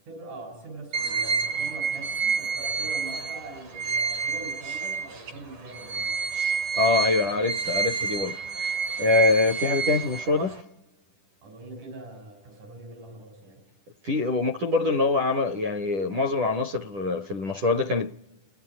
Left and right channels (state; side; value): late; left; 10 ms